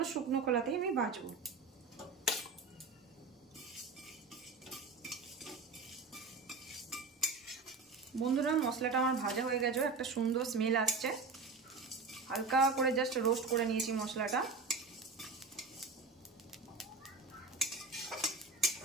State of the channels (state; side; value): quieter; left; 4.2 dB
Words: শুকনো কড়াতেই আমি ভাজবো। বন্ধুরা, মশলাটা আমার ভাজা হয়ে গেছে, একটা সুন্দর স্মেল আসছে। হালকা করে জাস্ট রোস্ট করে নিয়েছি মশলাটা।